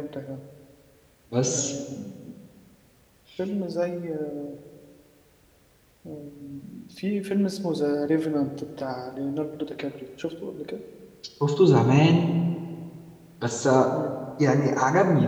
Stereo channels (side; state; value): both; identical; correlation 1.00